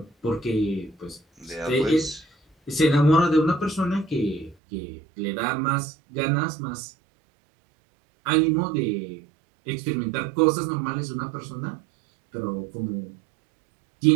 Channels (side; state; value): left; drops out; at 4.5 s